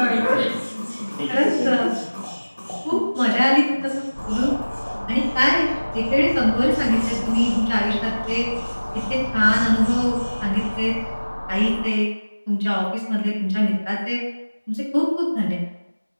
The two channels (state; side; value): inverted; both; correlation -1.00